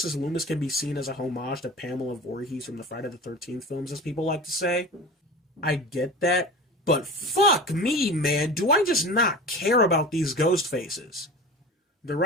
Loomis can be seen as a homage to Pamela Voorhees from the Friday the 13th films, as people like to say. I get that, but fuck me, man, do I just not care about these ghost faces? The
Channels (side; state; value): both; normal; correlation 0.34